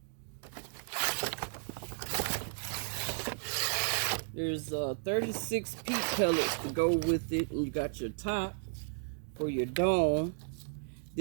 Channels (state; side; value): silent; left; digital silence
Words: There's 36 peat pellets to go with it, and you got your top for your dome.